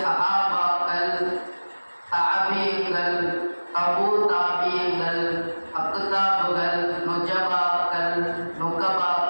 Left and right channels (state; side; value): inverted; both; correlation -1.00